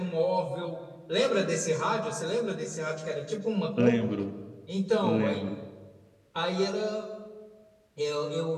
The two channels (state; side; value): identical; both; correlation 1.00